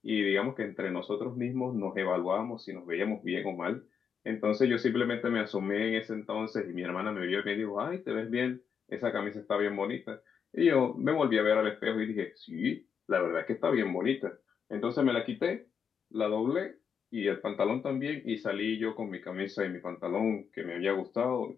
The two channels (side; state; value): right; quieter; 7.0 dB